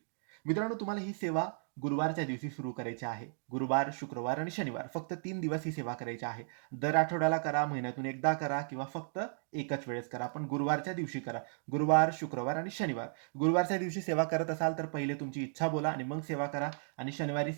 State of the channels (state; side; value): silent; left; digital silence